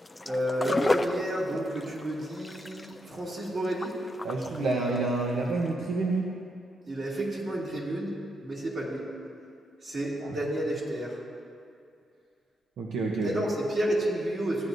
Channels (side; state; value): both; normal; correlation 0.81